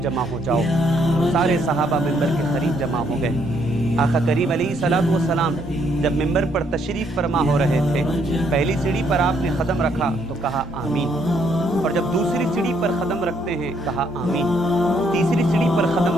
जमा हो जाओ। सारे सहाबा मिंबर के करीब जमा हो गए। आका करीम अलैहिस्सलातु वस्सलाम जब मिंबर पर तशरीफ़ फरमा हो रहे थे, पहली सीढ़ी पर आपने कदम रखा तो कहा आमीन, और जब दूसरी सीढ़ी पर कदम रखते हैं कहा आमीन, तीसरी सीढ़ी पर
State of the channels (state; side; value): normal; both; correlation 0.70